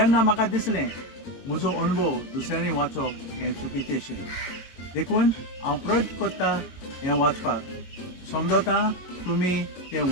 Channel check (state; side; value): late; right; 22 ms